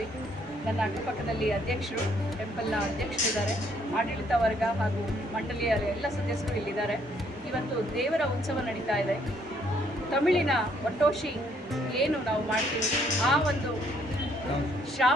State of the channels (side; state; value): both; normal; correlation 0.68